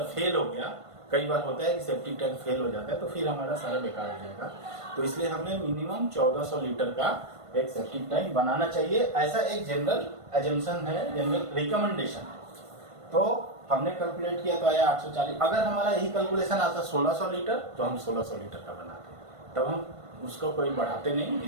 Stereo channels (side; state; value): left; late; 1.5 ms